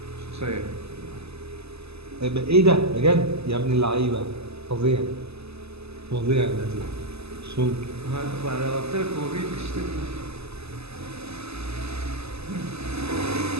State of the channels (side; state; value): left; late; 0.79 ms